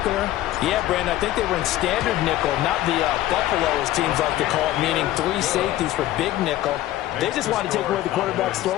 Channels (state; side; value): quieter; right; 14.6 dB